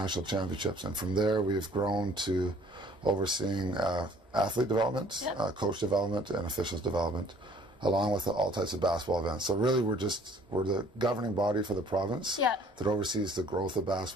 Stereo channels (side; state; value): both; normal; correlation 0.56